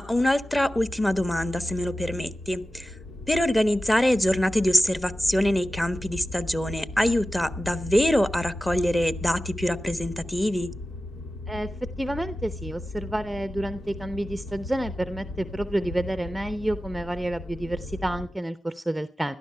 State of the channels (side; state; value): both; normal; correlation 0.94